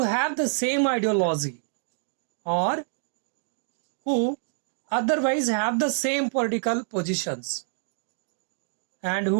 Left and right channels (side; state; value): left; silent; digital silence